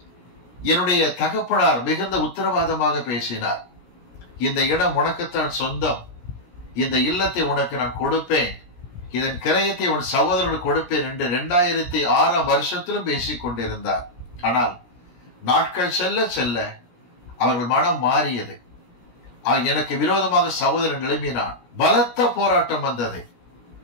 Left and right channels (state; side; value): late; right; 17 ms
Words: என்னுடைய தகப்பனார் மிகுந்த உத்தரவாதமாக பேசினார். இந்த இடம் உனக்குத்தான் சொந்தம், இந்த இல்லத்தை உனக்கு நான் கொடுப்பேன், இதன் கிரயத்தை உன் சகோதரனுக்கு கொடுப்பேன் என்று 2006ஆம் வருஷத்திலும் பேசிக் கொண்டிருந்தார். ஆனால் நாட்கள் செல்ல செல்ல அவர்கள் மனம் மாறியது. எனக்கு விரோதமாக சகோதரன் எழுப்பினான். பலத்த போராட்டம் வந்தது.